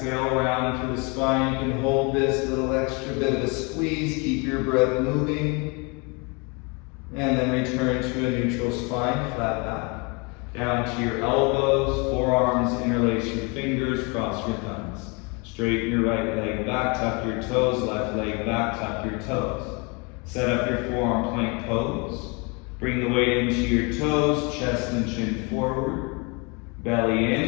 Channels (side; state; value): right; quieter; 30.8 dB